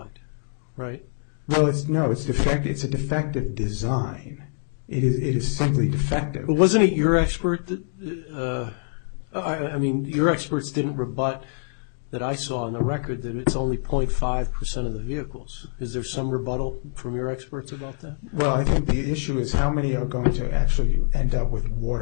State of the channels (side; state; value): right; silent; digital silence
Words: right? Well, it's defective. It's a defective design. It is simply defective. But wasn't it your expert that... your experts didn't rebut that I saw in the record that it's only 0.5% of the vehicles. Is there some rebuttal from your experts about that? Well, I think the issue is how many are going to actually end up with